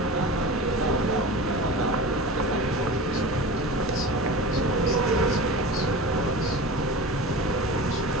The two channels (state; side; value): normal; both; correlation 0.32